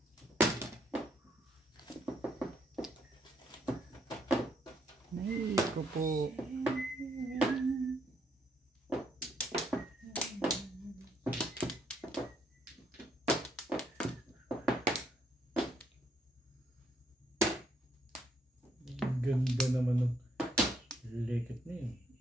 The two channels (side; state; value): both; normal; correlation 0.73